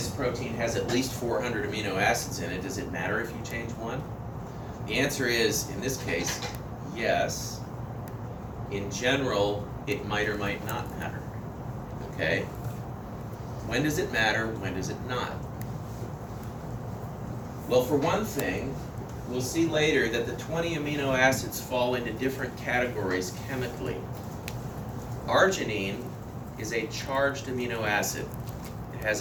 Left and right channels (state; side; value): identical; both; correlation 1.00